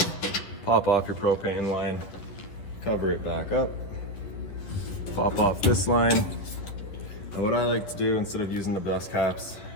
pop off your propane line, cover it back up, pop off this line. And what I like to do, instead of using the dust caps,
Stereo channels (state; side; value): late; right; 11 ms